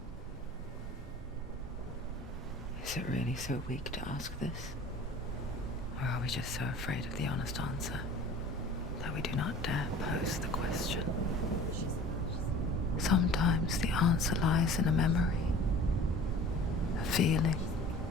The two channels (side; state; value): both; normal; correlation 0.44